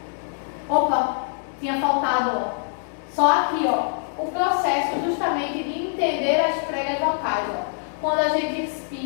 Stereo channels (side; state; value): right; silent; digital silence